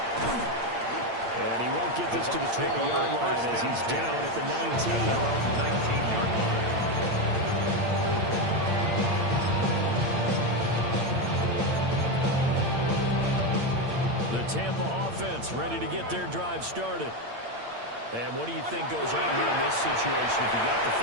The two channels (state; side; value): late; left; 8.7 ms